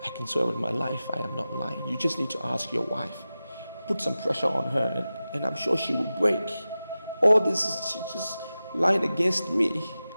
I can swear with my life I am not lying. You just need to ask your wife. Put some pressure on her and I'm sure she will break. All this is she's just lying against me.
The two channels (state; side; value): inverted; both; correlation -0.95